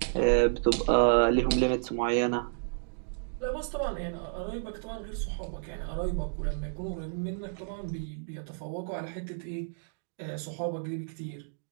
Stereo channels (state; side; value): silent; left; digital silence